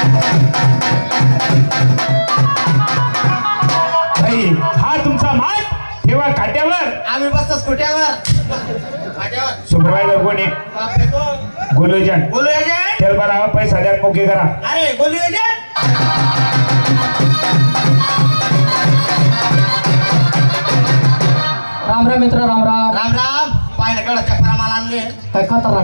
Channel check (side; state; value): both; inverted; correlation -1.00